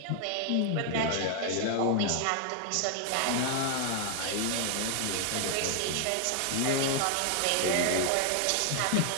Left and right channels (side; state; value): both; different; correlation 0.00